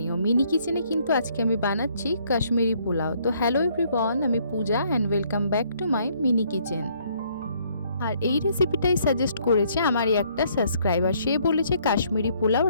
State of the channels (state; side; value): inverted; both; correlation -0.66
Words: মিনি কিচেনে কিন্তু আজকে আমি বানাচ্ছি কাশ্মীরি পোলাও। তো হ্যালো এভরিওয়ান, আমি Puja and welcome back to my mini kitchen. আর এই রেসিপিটাই সাজেস্ট করেছে আমারই একটা সাবস্ক্রাইবার। সে বলেছে কাশ্মীরি পোলাও